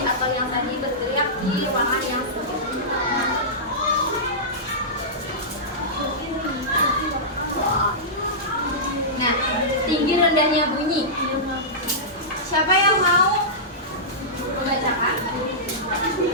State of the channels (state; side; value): normal; both; correlation -0.15